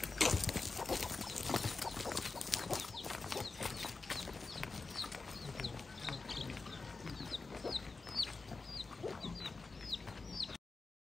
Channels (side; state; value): right; quieter; 4.0 dB